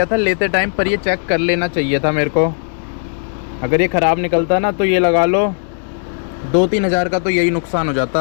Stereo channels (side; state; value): right; silent; digital silence